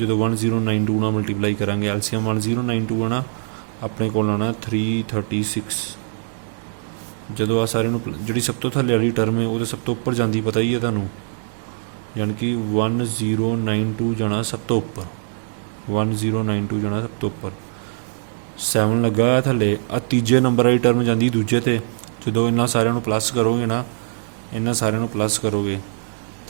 1092 ਨਾਲ ਮਲਟੀਪਲਾਈ ਕਰਾਂਗੇ, ਐਲਸੀਐਮ 1092 ਆਣਾ, ਆਪਣੇ ਕੋਲ ਆਉਣਾ 336। ਜਦੋਂ ਆ ਸਾਰੇ ਨੂੰ ਜਿਹੜੀ ਸਭ ਤੋਂ ਥੱਲੇ ਵਾਲੀ ਟਰਮ ਹੈ ਉਹਦੇ ਸਭ ਤੋਂ ਉੱਪਰ ਜਾਂਦੀ, ਪਤਾ ਹੀ ਹੈ ਤੁਹਾਨੂੰ, ਯਾਨੀ ਕਿ 1092 ਜਾਣਾ ਸਭ ਤੋਂ ਉੱਪਰ, 1092 ਜਾਣਾ ਸਭ ਤੋਂ ਉੱਪਰ। 7 ਲੱਗਾ ਹੋਇਆ ਥੱਲੇ, ਆ ਤੀਜੇ ਨੰਬਰ ਵਾਲੀ ਟਰਮ ਜਾਂਦੀ ਦੂਜੇ 'ਤੇ। ਜਦੋਂ ਇਹਨਾਂ ਸਾਰਿਆਂ ਨੂੰ ਪਲੱਸ ਕਰੋਗੇ ਨਾ, ਇਹਨਾਂ ਸਾਰਿਆਂ ਨੂੰ ਪਲੱਸ ਕਰੋਗੇ,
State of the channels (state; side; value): silent; left; digital silence